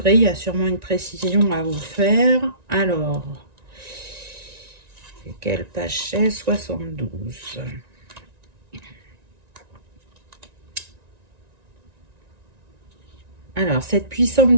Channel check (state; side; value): late; left; 1.9 ms